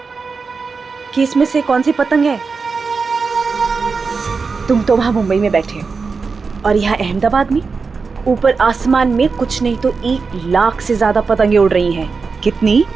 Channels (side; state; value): left; quieter; 4.8 dB